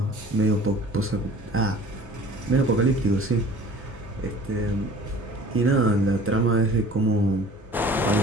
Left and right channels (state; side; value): normal; both; correlation 0.47